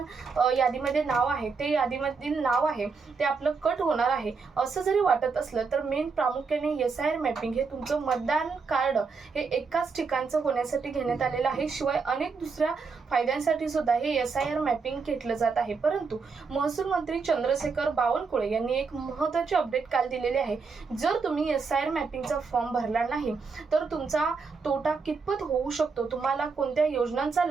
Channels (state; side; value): quieter; left; 4.9 dB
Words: यादीमध्ये नाव आहे ते यादीमधील नाव आहे ते आपलं कट होणार आहे, असं जरी वाटत असलं तर मेन प्रामुख्याने SIR मॅपिंग हे तुमचं मतदान कार्ड हे एकाच ठिकाणचं होण्यासाठी घेण्यात आलेलं आहे। शिवाय अनेक दुसऱ्या फायद्यांसाठी सुद्धा हे SIR मॅपिंग घेतलं जात आहे। परंतु महसूल मंत्री चंद्रशेखर बावनकुळे यांनी एक महत्त्वाची अपडेट काल दिलेली आहे। जर तुम्ही SIR मॅपिंगचा फॉर्म भरला नाही तर तुमचा तोटा कितपत होऊ शकतो, तुम्हाला कोणत्या योजनांचा